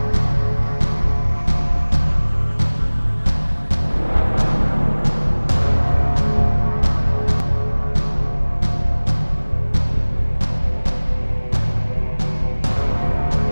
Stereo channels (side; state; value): both; inverted; correlation -1.00